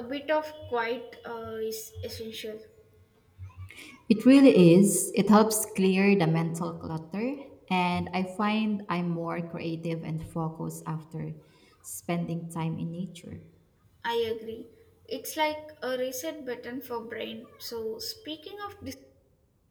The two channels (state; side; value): identical; both; correlation 1.00